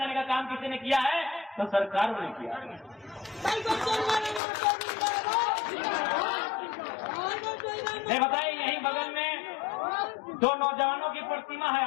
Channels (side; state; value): right; drops out; at 4.4 s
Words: का काम किसी ने किया है तो सरकार ने किया। नहीं बताइए, यही बगल में दो नौजवानों की प्रतिमा है,